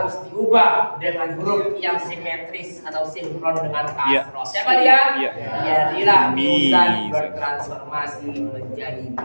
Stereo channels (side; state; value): both; inverted; correlation -1.00